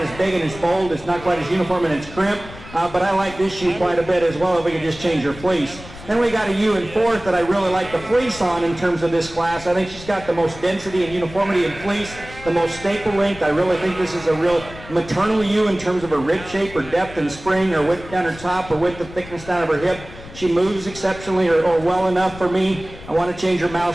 as big and as bold. It's not quite as uniform in its crimp. But I like this ewe quite a bit as well if we could just change her fleece. Then we got a ewe in fourth that I really like the fleece on in terms of this class. I think she's got the most density and uniformity in fleece, the most staple length. I really think this is a real maternal ewe in terms of her rib shape or depth and spring or width down her top or width and thickness down of her hip. She moves exceptionally or well enough for me. I want to change her mouth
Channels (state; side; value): noise; left; rumble, 16 dB below the sound